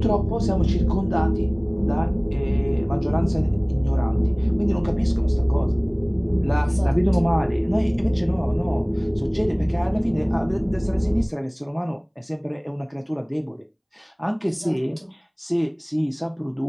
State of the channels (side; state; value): both; identical; correlation 1.00